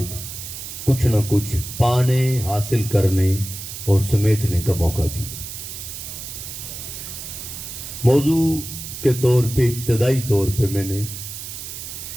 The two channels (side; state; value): right; noise; hiss, 9 dB below the sound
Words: کچھ نہ کچھ پانے، حاصل کرنے اور سمیٹنے کا موقع دیا۔ موضوع کے طور پہ ابتدائی طور پہ میں نے